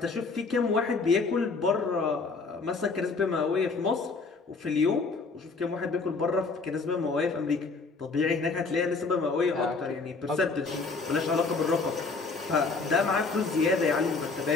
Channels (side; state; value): right; quieter; 4.2 dB